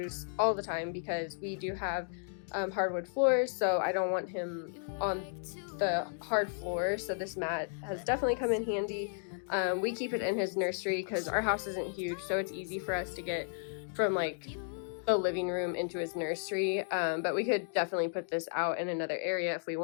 all the time because we do have hardwood floors, so I don't want him on the hard floor. So this mat has definitely come in handy. We keep it in his nursery because our house isn't huge, so it's easy for us to get from like the living room into his nursery, but we could definitely put this out in another area if we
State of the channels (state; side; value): silent; right; digital silence